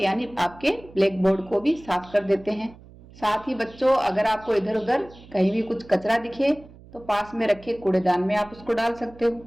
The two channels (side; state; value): right; noise; hum, 22 dB below the sound